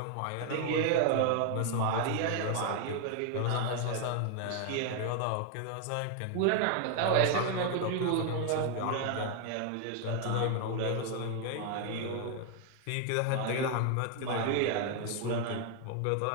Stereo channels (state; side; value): different; both; correlation 0.00